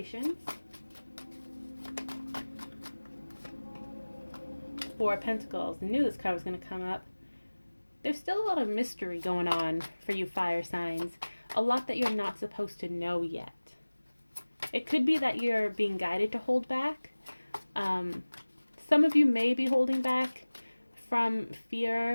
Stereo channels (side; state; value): both; inverted; correlation -1.00